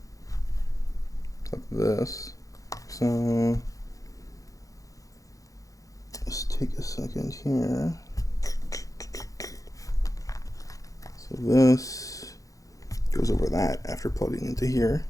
like this. So let's take a second here. So this goes over that after plugging into here.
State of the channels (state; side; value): late; right; 0.16 ms